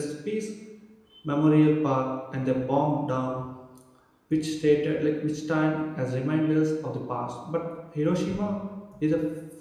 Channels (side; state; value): both; identical; correlation 1.00